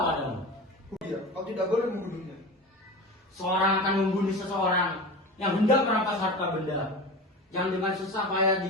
Iya, kau tidak boleh membunuhnya. Seorang akan membunuh seseorang yang hendak merampas harta benda yang dengan susah payah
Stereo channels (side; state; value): both; normal; correlation 0.31